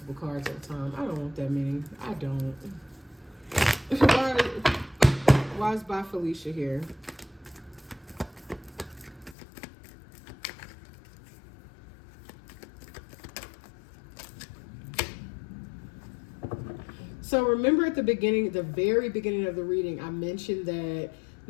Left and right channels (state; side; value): drops out; right; at 9.3 s